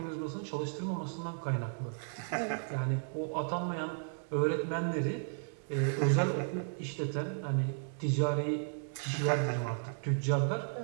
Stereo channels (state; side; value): silent; left; digital silence